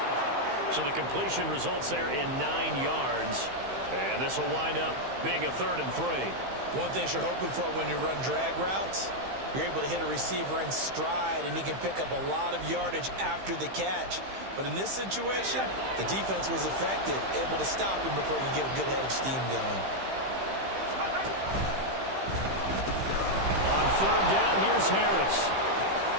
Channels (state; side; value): late; left; 15 ms